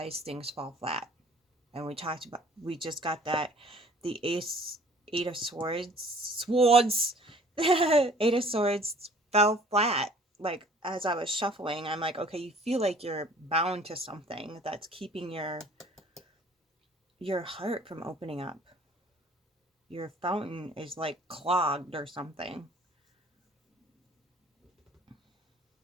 things fall flat. And we just got that, the Eight of Swords, Eight of Swords fell flat. Like, as I was shuffling, I'm like, okay, you feel like you're bound to something that's keeping your heart from opening up. Your fountain is like clogged or something.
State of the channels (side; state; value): both; normal; correlation 0.52